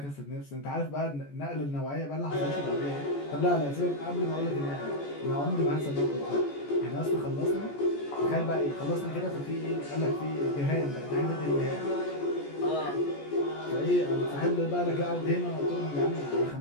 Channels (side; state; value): right; late; 14 ms